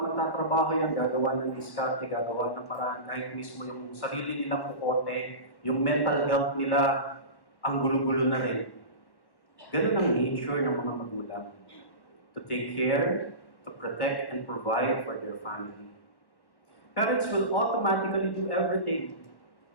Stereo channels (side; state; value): right; late; 1.1 ms